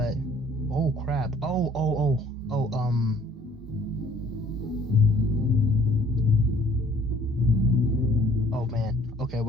oh crap! Oh man. Okay,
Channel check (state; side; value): normal; both; correlation 0.57